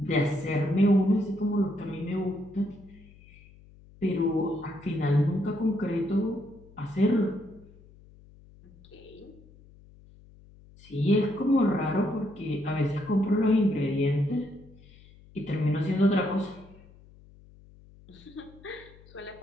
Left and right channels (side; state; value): left; noise; hum, 24 dB below the sound